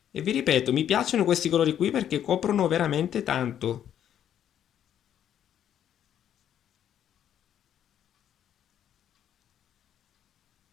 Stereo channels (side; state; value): right; quieter; 10.1 dB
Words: E vi ripeto, mi piacciono questi colori qui perché coprono veramente tanto.